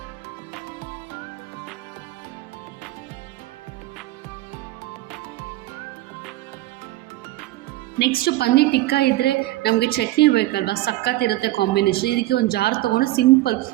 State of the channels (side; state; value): left; quieter; 16.9 dB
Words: ನೆಕ್ಸ್ಟು ಪನ್ನೀರ್ ಟಿಕ್ಕಾ ಇದ್ದರೆ ನಮಗೆ ಚಟ್ನಿ ಬೇಕಲ್ವ, ಸಕ್ಕತ್ತಿರುತ್ತೆ ಕಾಂಬಿನೇಷನ್. ಇದಕ್ಕೆ ಒಂದು ಜಾರ್ ತೊಗೊಂಡು ಸಿಂಪಲ್